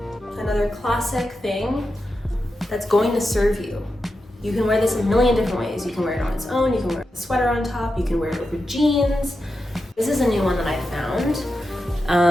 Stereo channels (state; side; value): normal; both; correlation 0.89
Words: another classic thing that's going to serve you. You can wear this a million different ways. You can wear it on its own, you can wear a sweater on top, you can wear it over jeans. This is a new one that I